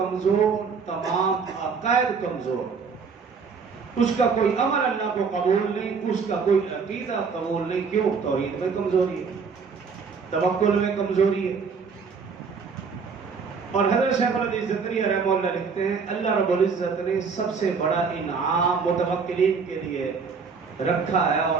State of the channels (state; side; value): quieter; left; 5.4 dB